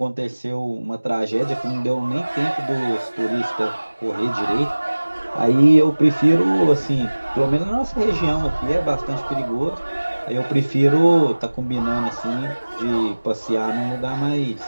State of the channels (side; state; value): both; inverted; correlation -1.00